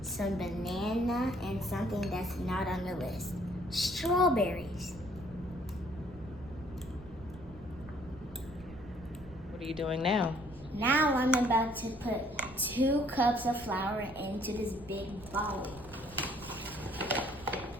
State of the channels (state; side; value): noise; right; rumble, 18 dB below the sound